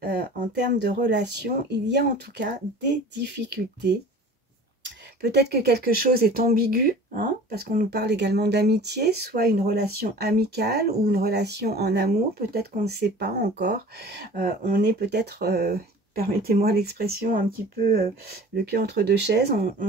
en termes de relation, il y a en tout cas des difficultés. Peut-être que quelque chose est ambigu, parce qu'on nous parle également d'amitié, soit une relation amicale ou une relation en amour. Peut-être qu'on ne sait pas encore. On est peut-être, permettez-moi l'expression, un petit peu le cul entre deux chaises. On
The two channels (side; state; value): both; normal; correlation 0.43